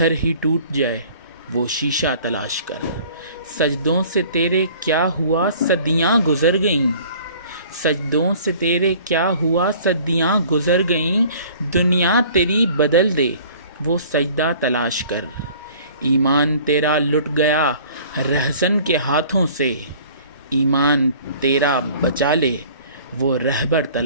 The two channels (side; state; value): both; inverted; correlation -0.50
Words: ہی ٹوٹ جائے وہ شیشہ تلاش کر۔ سجدوں سے تیرے کیا ہوا صدیاں گزر گئیں، سجدوں سے تیرے کیا ہوا صدیاں گزر گئیں، دنیا تیری بدل دے وہ سجدہ تلاش کر۔ ایمان تیرا لٹ گیا رہزن کے ہاتھوں سے، ایمان تیرا بچا لے وہ رہبر